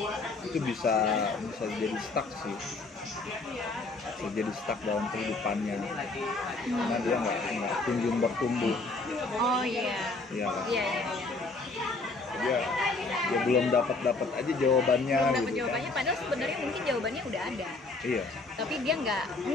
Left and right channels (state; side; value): quieter; right; 3.5 dB